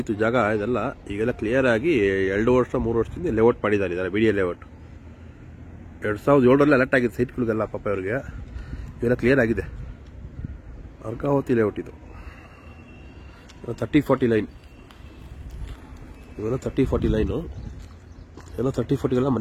ಇತ್ತು ಜಾಗ ಇದೆಲ್ಲ. ಈಗೆಲ್ಲ ಕ್ಲಿಯರ್ ಆಗಿ 2 ವರ್ಷ 3 ವರ್ಷದಿಂದ ಲೇಔಟ್ ಮಾಡಿದ್ದಾರೆ ಇದೆಲ್ಲ. BDA ಲೇಔಟ್ 2007ರಲ್ಲಿ ಅಲರ್ಟ್ ಆಗಿದೆ ಸೈಟ್ಗಳಿಗೆಲ್ಲ. ಪಾಪ ಇವ್ರಿಗೆ ಇವೆಲ್ಲ ಕ್ಲಿಯರ್ ಆಗಿದೆ. ಅರ್ಕಾವತಿ ಲೇಔಟ್ ಇದು. 30-40 ಲೈನ್ ಇವೆಲ್ಲ. 30-40 ಲೈನು ಎಲ್ಲ. 30-40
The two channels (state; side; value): identical; both; correlation 1.00